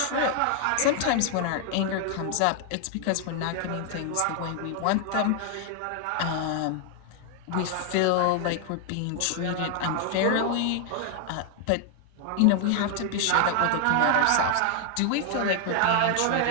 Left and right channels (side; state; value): both; different; correlation 0.00